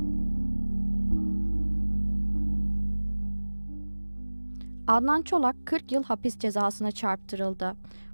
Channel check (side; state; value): both; inverted; correlation -1.00